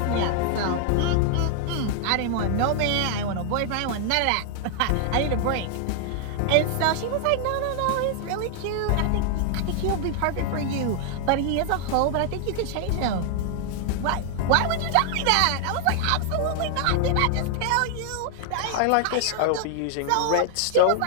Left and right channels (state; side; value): different; both; correlation 0.00